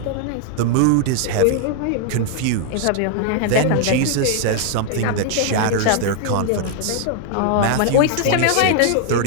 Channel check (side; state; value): both; different; correlation 0.00